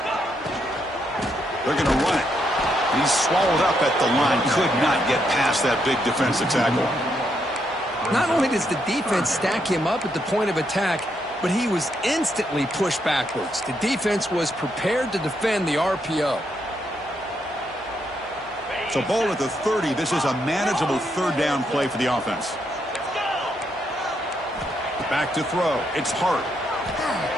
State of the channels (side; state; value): both; normal; correlation 0.78